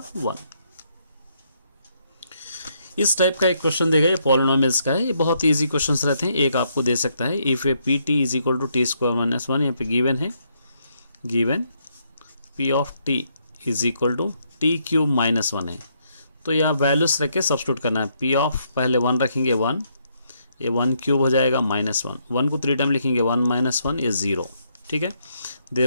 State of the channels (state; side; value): inverted; both; correlation -0.74